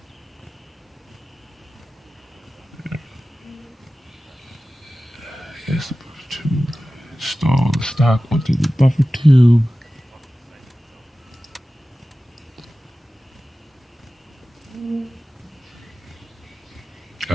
Yes, the buffer tube. Install the stock onto the buffer tube.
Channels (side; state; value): both; normal; correlation 0.95